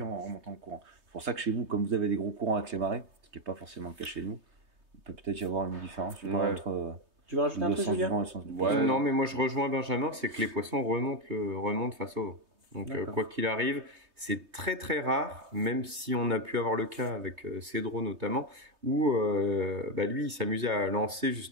en remontant le courant. C'est pour ça que chez vous, comme vous avez des gros courants avec les marées, ce qui n'est pas forcément le cas chez nous, il peut peut-être y avoir une différence je sais pas, Ouais. entre Tu veux rajouter un le truc, sens du Julien? vent et le sens du Ouais. poisson. Non, mais moi je rejoins Benjamin, c'est que les poissons remontent face au vent. Donc D'accord. quoi qu'il arrive, c'est très très rare, même si on a pu avoir le cas avec Cédro notamment, où lui il s'amusait à lancer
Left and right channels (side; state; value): left; late; 3.2 ms